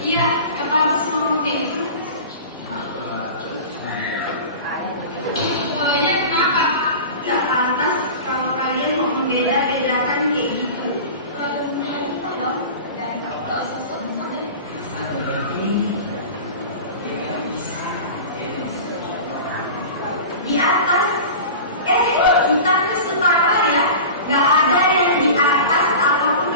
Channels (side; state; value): both; inverted; correlation -0.34